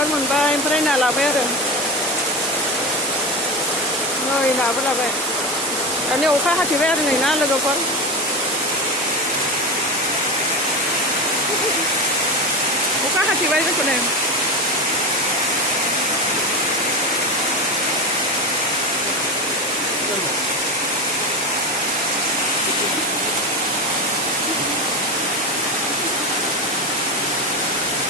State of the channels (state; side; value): normal; both; correlation 0.21